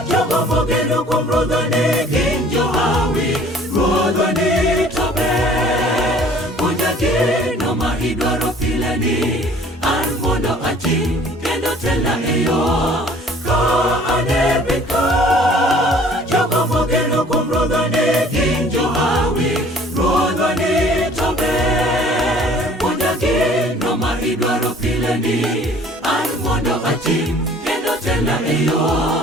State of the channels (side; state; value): both; normal; correlation 0.53